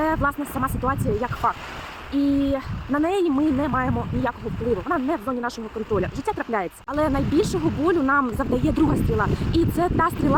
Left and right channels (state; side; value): identical; both; correlation 1.00